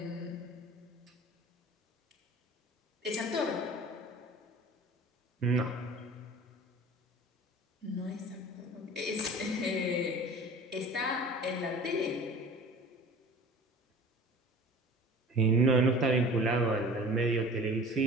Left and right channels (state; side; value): normal; both; correlation 0.42